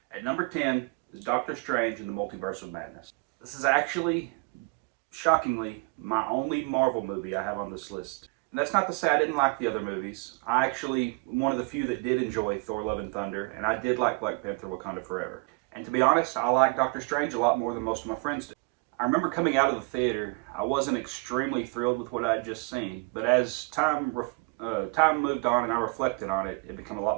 At number 10 is Doctor Strange in the Multiverse of Madness. This is actually, shockingly, my only Marvel movie I have on this list. And that's not to say I didn't like the other movies. I actually, one of the few that did enjoy Thor Love and Thunder, and I did like Black Panther Wakanda Forever. And to be honest, I like Doctor Strange a lot more than most of my friends do. I remember coming out of the theater, I wasn't extremely thrilled with what I had just seen, but as time moved on and I reflected on it, it became a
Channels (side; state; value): left; quieter; 31.7 dB